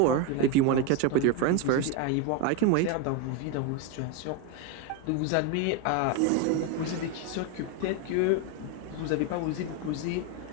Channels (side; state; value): both; different; correlation 0.03